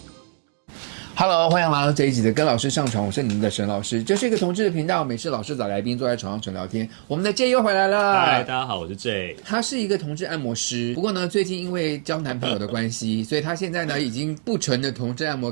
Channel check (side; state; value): left; silent; digital silence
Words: Hello， 欢迎来到这一集的跟老师上床，我是你们的沈老师。这是一个同志的频道，每次老师找来宾坐在床上纯聊天。我们的 J 又回来了。嗨，大家好，我是 J。他是一个同志按摩师，不过呢，最近因为交男朋友的关系，所以他现在呢已经不纯的同志按摩